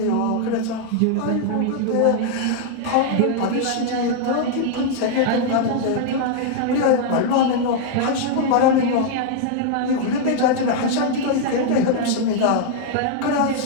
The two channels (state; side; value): different; both; correlation 0.00